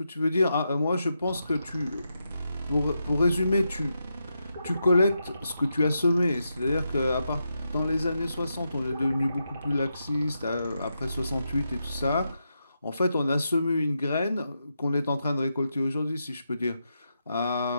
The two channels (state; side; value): inverted; both; correlation -0.85